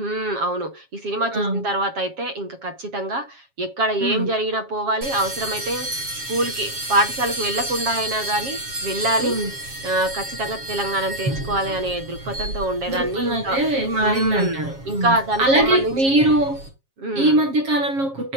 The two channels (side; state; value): left; late; 7.4 ms